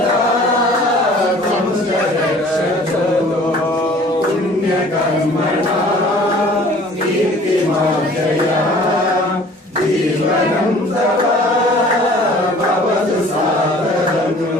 त्वं च रक्षतु पुण्यकर्मणा कीर्तिमार्जय जीवनं तव भवतु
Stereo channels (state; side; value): normal; both; correlation 0.50